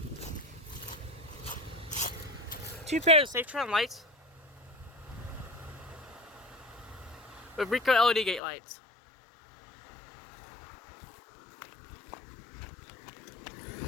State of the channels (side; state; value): right; drops out; at 8.4 s